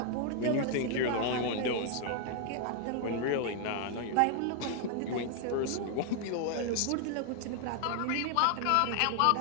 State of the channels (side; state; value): both; different; correlation 0.00